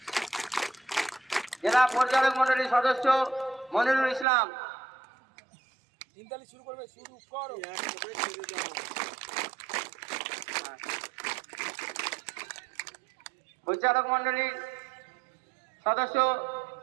জেলা পরিচালক মন্ডলীর সদস্য মনিরুল ইসলাম, পরিচালক মন্ডলীর সদস্য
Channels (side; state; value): left; drops out; at 4.2 s